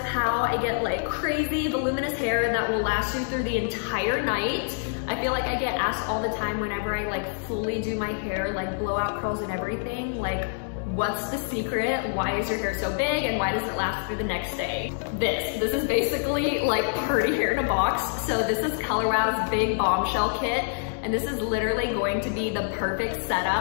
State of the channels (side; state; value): right; silent; digital silence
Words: how I get like crazy voluminous hair that will last you through the entire night. I feel like I get asked all the time whenever I like fully do my hair, like blowout curls and everything, like what's the secret? Why is your hair so big and why does it last through the next day? This is basically like party hair in a box. So this is Color Wow's big bombshell kit. And this is literally going to be the perfect